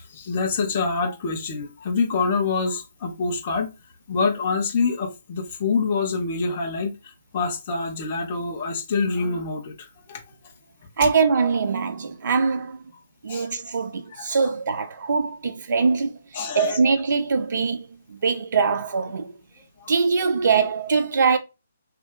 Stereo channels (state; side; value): inverted; both; correlation -0.69